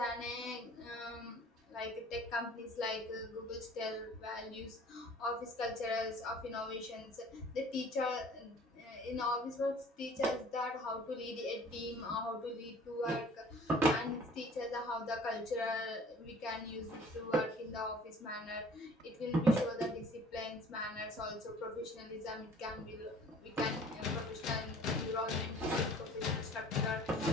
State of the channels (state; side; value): normal; both; correlation 0.50